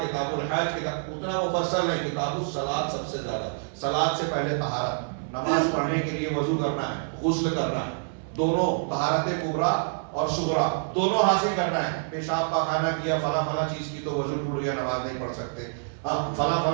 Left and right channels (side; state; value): left; silent; digital silence